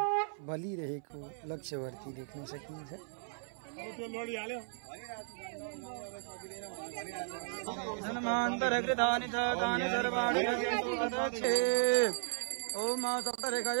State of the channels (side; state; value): left; silent; 54 dB below the other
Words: बलिरहेको लक्ष्यवर्ती देख्न सकिन्छ। धनमान्तरकृतानि च तानि सर्वाणि अदक्षे। ओम